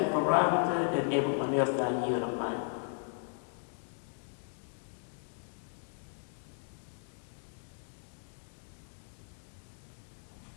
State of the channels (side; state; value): right; silent; 54 dB below the other